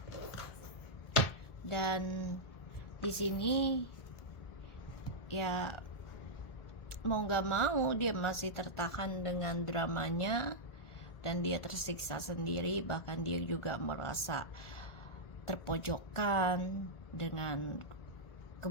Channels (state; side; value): late; right; 1.7 ms